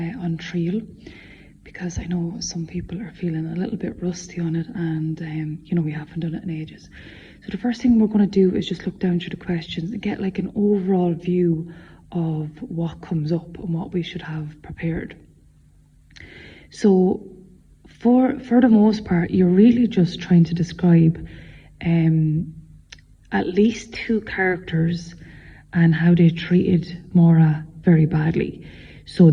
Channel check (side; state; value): both; identical; correlation 1.00